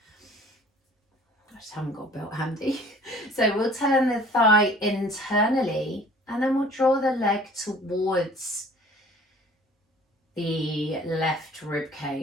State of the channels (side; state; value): both; normal; correlation 0.50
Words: I just haven't got a belt handy. So we'll turn the thigh internally and then we'll draw the leg towards the left rib